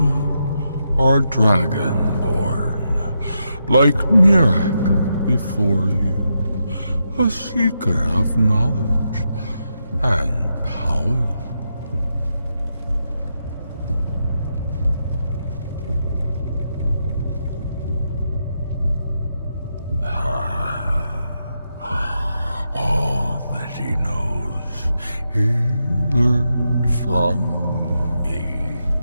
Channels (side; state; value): both; inverted; correlation -0.84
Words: are dragonborn, like Mirak before you, a seeker of knowledge and power. All that he knows, he learned from me.